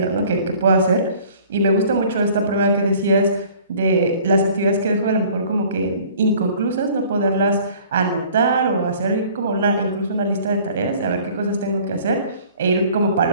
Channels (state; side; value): inverted; both; correlation -0.52